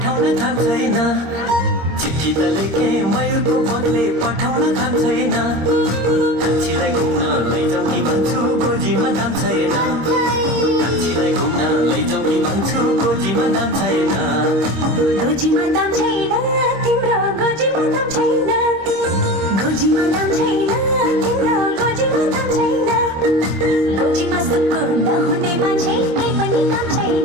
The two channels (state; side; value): late; left; 26 ms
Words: थाम छैन चिठी त लेखे मयूरको पत्ले पठाउन थाम छैन कान्छीलाई घुम्न लैजाऊ कि भन्छु गोजीमा दाम छैन कान्छीलाई घुम्न लैजाऊ कि भन्छु गोजीमा दाम छैन गोजीमा दाम छैन तिम्रो गोजीमा दाम छैन गोजीमा दाम छैन तिम्रो गोजीमा दाम छैन गोजीमा सुक्खु नहुने मान्छे केही पनि काम